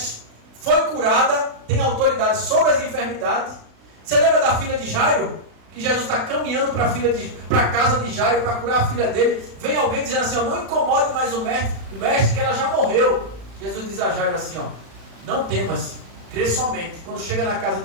foi curada, tem autoridade sobre as enfermidades. Você lembra da filha de Jairo? Que Jesus está caminhando para a casa de Jairo para curar a filha dele. Vem alguém dizendo assim, não incomode mais o mestre que ela já morreu. Jesus diz a Jairo assim, não temas, crê somente. Quando chega na casa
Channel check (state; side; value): late; left; 36 ms